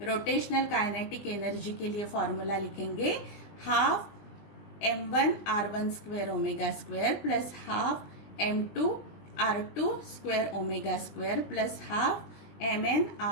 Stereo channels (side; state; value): right; late; 20 ms